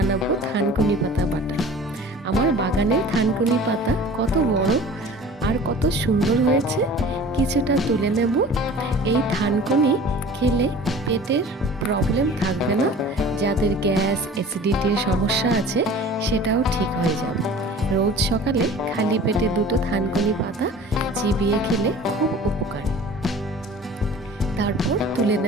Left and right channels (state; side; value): normal; both; correlation 0.43